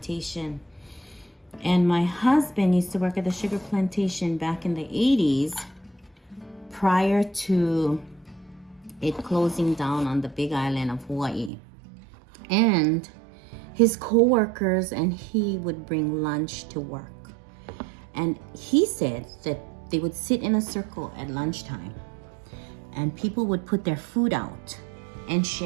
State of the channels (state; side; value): drops out; left; at 11.5 s